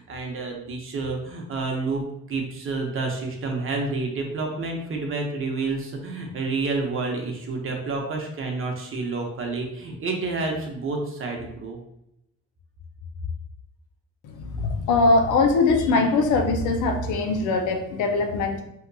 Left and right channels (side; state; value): both; normal; correlation 0.08